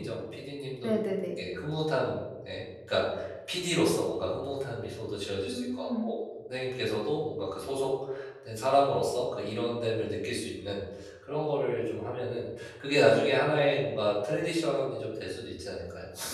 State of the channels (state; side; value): identical; both; correlation 1.00